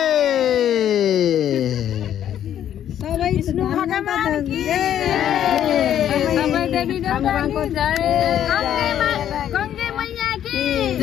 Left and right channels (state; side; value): quieter; right; 10.5 dB